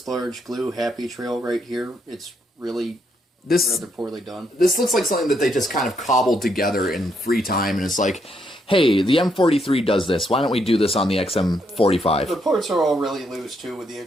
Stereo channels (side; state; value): both; normal; correlation 0.76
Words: large glue happy trail right here. It's really rather poorly done. This looks like something that they just kind of cobbled together in free time, and it's like, hey, the M43 does this. Why don't we do this on the XM45? The parts are all really loose, too, with the